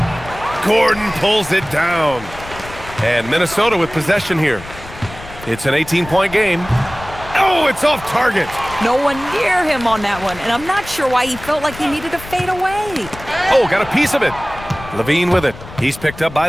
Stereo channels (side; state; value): left; noise; rumble, 15 dB below the sound